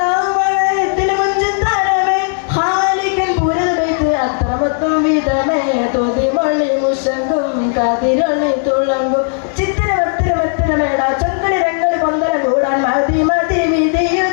മുഞ്ചും തരമേ ഹാലിക്കൻ പുരവൈത്ത് അത്രമൊത്തും വിധമേ തോതി മൊഴി മുഷങ്കും കതിരൊളി തുളങ്കും ചിത്തിരമത്തിരമത്തിരമേട ചൊങ്കടി രംഗളി പൊന്തല കൂടാൻ മതി മതി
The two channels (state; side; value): silent; right; 69 dB below the other